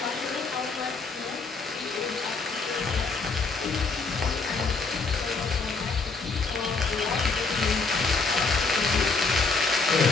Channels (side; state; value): right; quieter; 4.2 dB